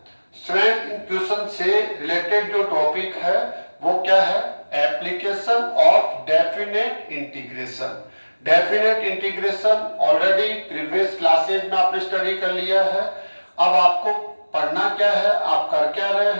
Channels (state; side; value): inverted; both; correlation -1.00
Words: स्टूडेंट इन क्वेश्चन से रिलेटेड जो टॉपिक है वो क्या है? Application of definite integration. Definite integration already previous classes में आपने स्टडी कर लिया है। अब आपको पढ़ना क्या है, आप कर क्या रहे